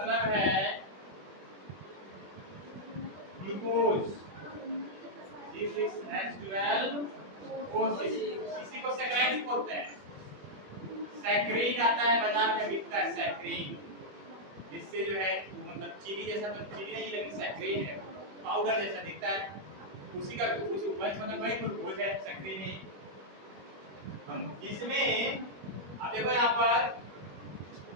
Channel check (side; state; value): left; late; 21 ms